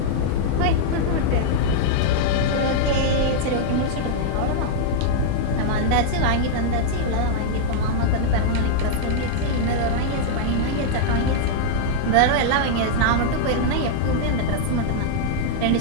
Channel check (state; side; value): different; both; correlation -0.02